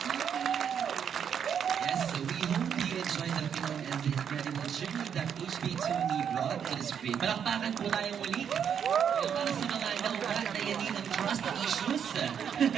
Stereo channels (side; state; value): left; quieter; 8.0 dB